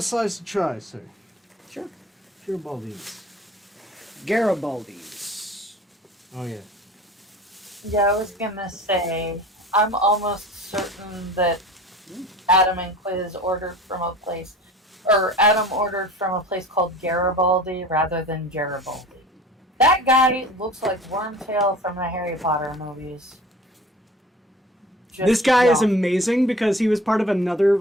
slice a try, sir. Sure. Garibaldi's. Garibaldi's. Oh, yeah. Yeah, I was gonna say, I'm almost certain that Adam and Quiz ordered from a place, or Adam ordered from a place called Garibaldi rather than Garibaldi. That guy looks like Wormtail from the Harry Potter movies. This guy is amazing because he was part of another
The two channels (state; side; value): normal; both; correlation 0.42